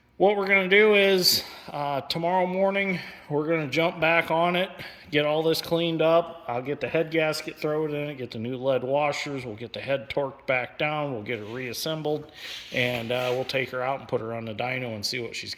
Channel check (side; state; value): both; identical; correlation 1.00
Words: what we're going to do is tomorrow morning, we're going to jump back on it, get all this cleaned up. I'll get the head gasket, throw it in it, get the new lead washers. We'll get the head torqued back down. We'll get it reassembled, and we'll take her out and put her on the dyno and see what she's